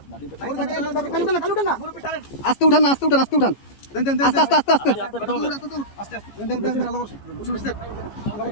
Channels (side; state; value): right; late; 14 ms